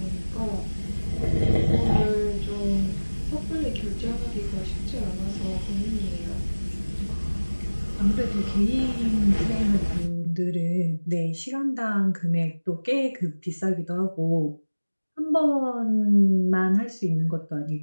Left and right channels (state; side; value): inverted; both; correlation -1.00